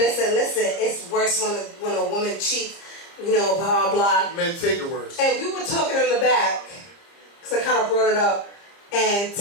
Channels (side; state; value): right; late; 30 ms